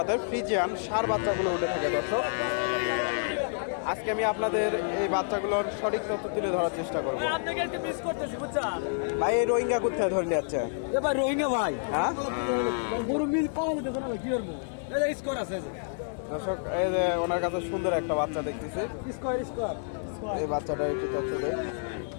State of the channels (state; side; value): silent; right; digital silence